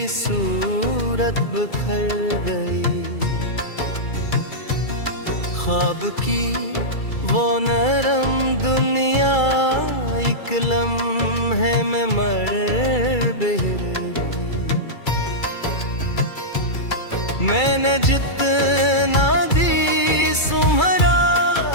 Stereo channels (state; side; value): late; right; 2.3 ms